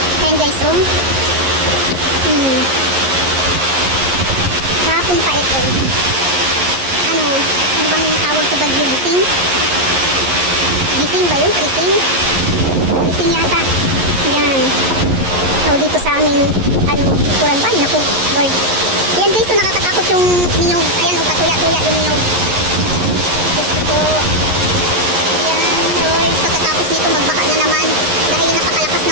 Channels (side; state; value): left; late; 11 ms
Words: Ayan guys, oh. Kahapon pa ito. Ano bang tawag sa bagyo? Gising? Gising ba yun? Gising? Gising yata. Yan. So, dito sa amin, kuran ba? Naku, Lord. Ayan guys, so nakakatakot yung niyog. Ayan, patuya-tuya yung niyog. Gusto ko. Ayan, Lord. Pagkatapos nito, magbaka na naman. Dahil napakalakas